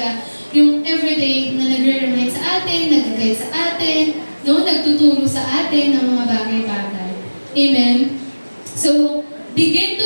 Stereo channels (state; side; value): inverted; both; correlation -1.00